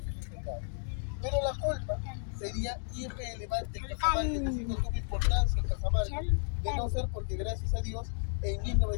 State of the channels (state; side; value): silent; right; digital silence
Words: hacendados. Pero La Colpa sería irrelevante en Cajamarca, es decir, no tuvo importancia en Cajamarca, de no ser porque, gracias a Dios, en